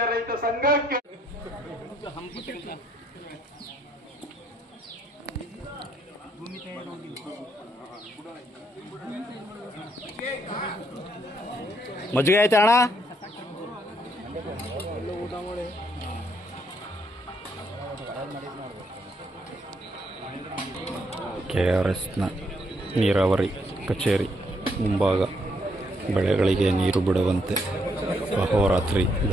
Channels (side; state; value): both; normal; correlation 0.73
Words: ರೈತ ಸಂಘಕ್ಕೆ ಮಜ್ಜಿಗೆ ಐತೆ ಅಣ್ಣ. KRSನ ನೀರಾವರಿ ಕಚೇರಿ ಮುಂಭಾಗ ಬೆಳೆಗಳಿಗೆ ನೀರು ಬಿಡುವಂತೆ ಅಹೋರಾತ್ರಿ